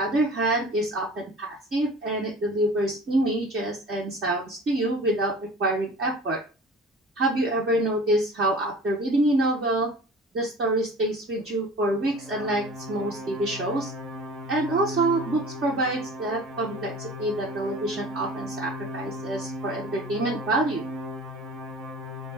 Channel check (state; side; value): normal; both; correlation 0.42